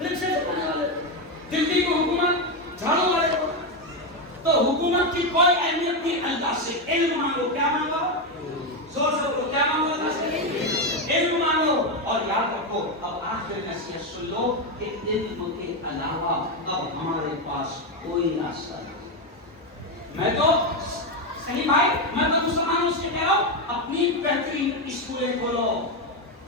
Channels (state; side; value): normal; both; correlation 0.09